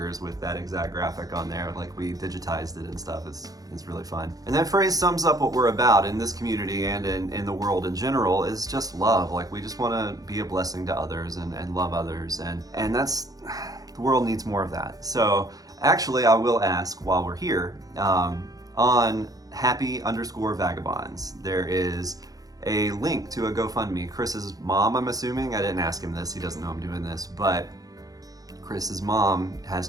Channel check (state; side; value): late; left; 0.18 ms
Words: with that exact graphic on there. Like, we digitized it and stuff. It's really fun. And that phrase sums up what we're about in this community and in the world in general, is just love. Like, we just want to be a blessing to others and love others, and that's, the world needs more of that. So actually, I will ask while we're here, on happy_vagabonds, there is a link to a GoFundMe. Chris's mom, I'm assuming, I didn't ask him this, he doesn't know I'm doing this, but Chris's mom has